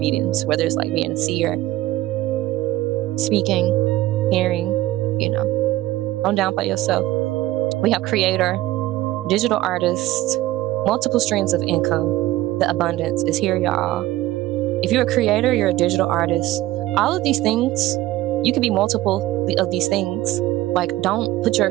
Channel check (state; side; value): quieter; left; 16.3 dB